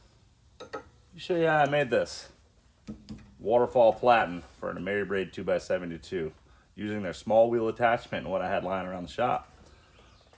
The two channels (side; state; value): both; identical; correlation 1.00